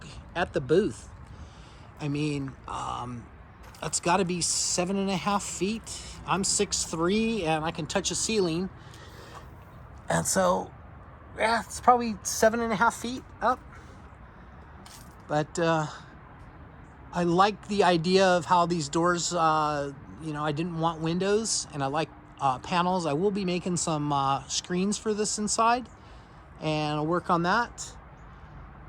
at the booth. I mean, that's got to be 7.5 feet. I'm 6'3", and I can touch a ceiling. And so yeah, it's probably 7.5 feet up. But I like the idea of how these doors, you know, I didn't want windows, and I like panels. I will be making some screens for this inside, and I'll work on that.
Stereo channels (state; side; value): identical; both; correlation 1.00